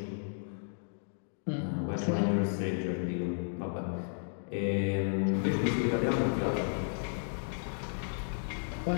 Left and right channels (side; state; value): right; silent; digital silence